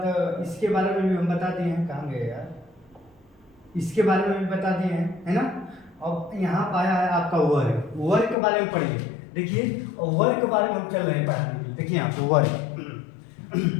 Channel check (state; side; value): drops out; right; at 8.3 s